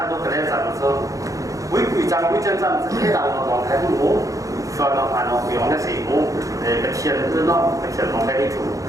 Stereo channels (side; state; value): left; late; 0.16 ms